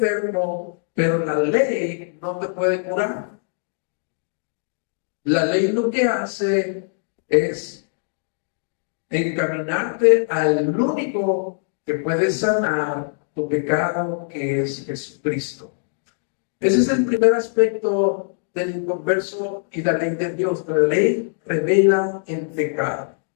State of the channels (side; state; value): right; silent; digital silence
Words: pero la ley no te puede curar. La ley lo que hace es encaminarte al único que puede sanar tu pecado, que es Jesucristo. Ese es el primer aspecto del inconverso y la ley de Dios. La ley revela el pecado.